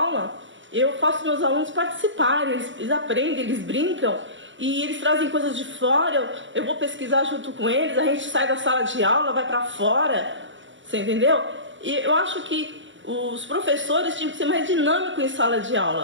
eu faço meus alunos participarem, eles aprendem, eles brincam, e eles trazem coisas de fora, eu vou pesquisar junto com eles, a gente sai da sala de aula, vai para fora, você entendeu? E eu acho que os professores tinham que ser mais dinâmicos em sala de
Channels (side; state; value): left; late; 0.55 ms